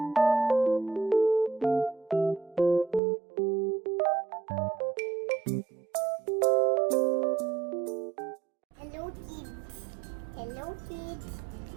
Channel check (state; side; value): drops out; left; at 3.0 s